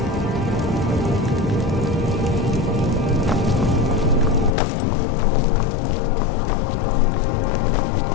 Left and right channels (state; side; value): drops out; right; at 4.5 s